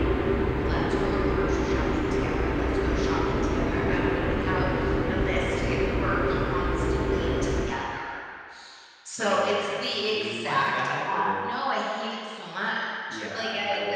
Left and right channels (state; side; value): identical; both; correlation 1.00